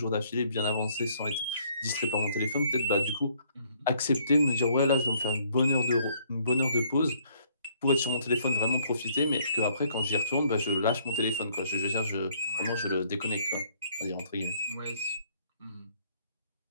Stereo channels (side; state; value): both; inverted; correlation -0.65